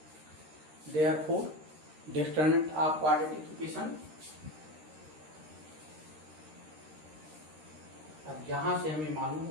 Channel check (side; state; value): left; late; 13 ms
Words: Therefore determinant of quadratic equation, अब यहां से हमें मालूम